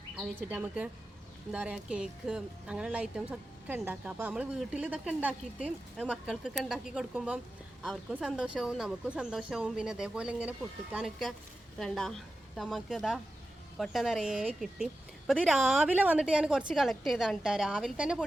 അത് വെച്ചിട്ട് നമുക്ക് എന്താ പറയുക കേക്ക് അങ്ങനെയുള്ള ഐറ്റംസ് ഒക്കെ ഉണ്ടാക്കാം. അപ്പോൾ നമ്മൾ വീട്ടിൽ ഇതൊക്കെ ഉണ്ടാക്കിയിട്ട് മക്കൾക്കൊക്കെ ഉണ്ടാക്കി കൊടുക്കുമ്പം അവർക്കും സന്തോഷവും നമുക്കും സന്തോഷവും. പിന്നെ അതേപോലെ ഇങ്ങനെ പൊട്ടിക്കാനൊക്കെ വേണ്ട നമുക്ക് ഇതാ കൊട്ട നിറയെ കിട്ടി. അപ്പോൾ ഇത് രാവിലെ വന്നിട്ട് ഞാൻ കുറച്ച് കളക്ട് ചെയ്താണ് കേട്ടോ. രാവിലെ തന്നെ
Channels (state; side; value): normal; both; correlation 0.92